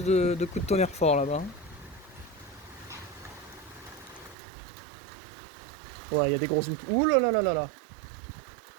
de coups de tonnerre forts là-bas. Ouais, il y a des grosses gouttes. Ouh là là là là là.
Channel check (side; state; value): left; drops out; at 4.4 s